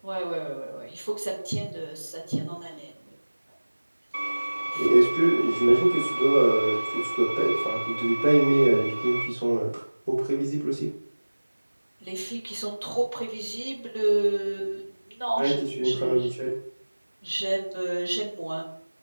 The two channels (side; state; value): both; inverted; correlation -1.00